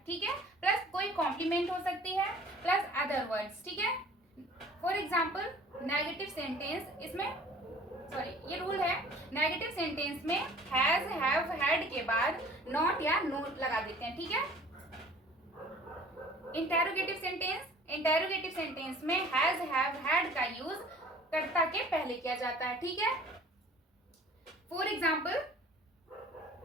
ठीक है, प्लस कोई कॉम्प्लीमेंट हो सकती है, प्लस अदर वर्ड्स, ठीक है। फॉर एग्जाम्पल नेगेटिव सेंटेंस, इसमें सॉरी ये रूल है, नेगेटिव सेंटेंस में हैज, हैव, हैड के बाद नॉट या नो लगा देते हैं, ठीक है। इंटेरोगेटिव सेंटेंस में हैज, हैव, हैड का यूज कर्ता के पहले किया जाता है, ठीक है। फॉर एग्जाम्पल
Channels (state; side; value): normal; both; correlation 0.49